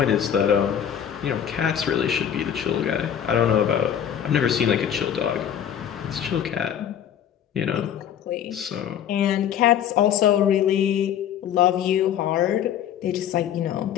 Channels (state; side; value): quieter; right; 9.4 dB